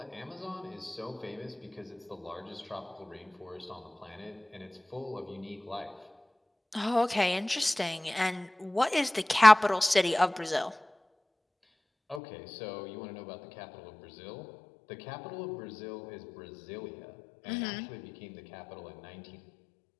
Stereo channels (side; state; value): right; drops out; at 12.2 s